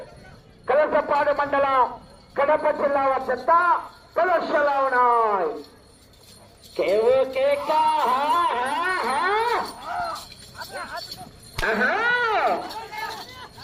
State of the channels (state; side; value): identical; both; correlation 1.00